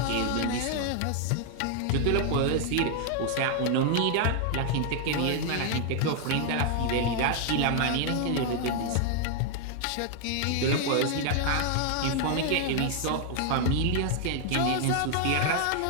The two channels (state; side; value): different; both; correlation 0.00